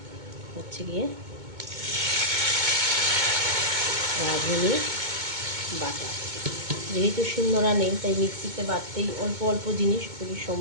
হচ্ছে গিয়ে রাঁধুনি বাটা। যেহেতু শিলনোড়া নেই তাই মিক্সিতে বাটতেই অল্প অল্প জিনিস খুবই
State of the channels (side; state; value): left; late; 2.2 ms